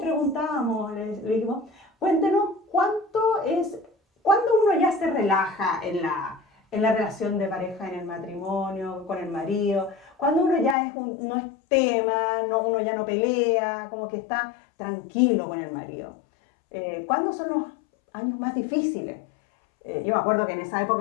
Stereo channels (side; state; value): right; drops out; at 10.8 s